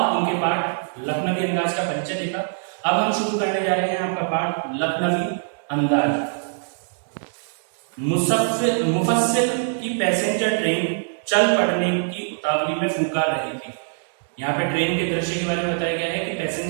उनके पाठ लखनवी अंदाज का परिचय देखा। अब हम शुरू करने जा रहे हैं आपका पाठ लखनवी अंदाज। मुफस्सिल की पैसेंजर ट्रेन चल पड़ने की उतावली में फुंकार रही थी। यहाँ पे ट्रेन के दृश्य के बारे में बताया गया है कि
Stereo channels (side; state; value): left; silent; digital silence